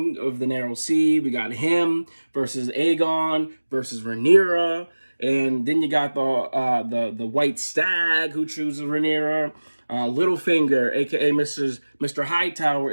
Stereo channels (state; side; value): inverted; both; correlation -1.00